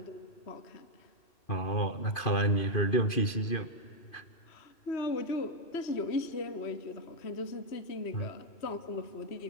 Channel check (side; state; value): right; late; 2.5 ms